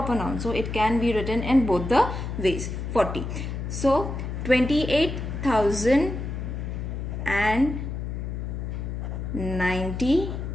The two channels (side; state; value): left; noise; hum, 5 dB below the sound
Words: noun. So it can be written in both the ways. 40. So